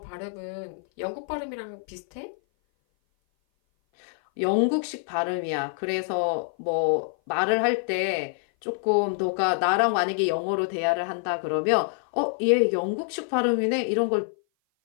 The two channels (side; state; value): right; silent; 57 dB below the other